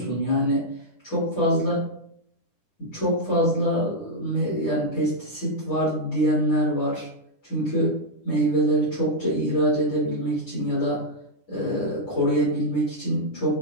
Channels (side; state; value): right; late; 10 ms